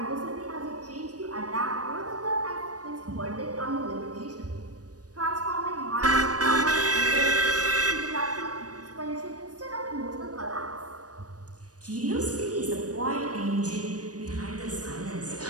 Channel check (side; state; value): left; late; 0.68 ms